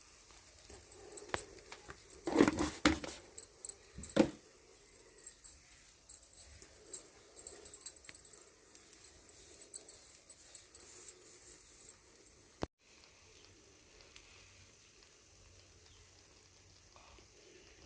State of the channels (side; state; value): both; identical; correlation 1.00